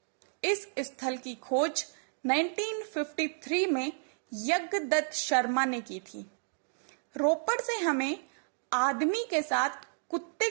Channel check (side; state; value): left; silent; digital silence